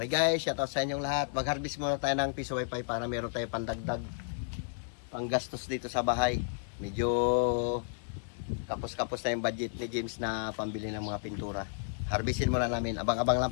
guys, shoutout sa inyong lahat. Mag-harvest muna tayo ng piso wifi para meron tayo pandagdag, panggastos dito sa bahay. Medyo kapos-kapos na yung budget ni James na pambili ng mga pintura. Harvestin muna namin. Abang-abang lang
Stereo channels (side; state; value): right; silent; digital silence